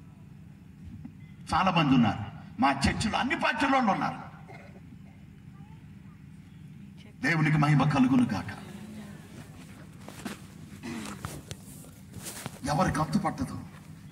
చాలా మంది ఉన్నారు. మా చర్చిలో అన్ని పార్టీల వాళ్ళు ఉన్నారు. దేవునికి మహిమ కలుగును గాక. ఎవరికి అంతు పట్టదు.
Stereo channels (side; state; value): both; identical; correlation 1.00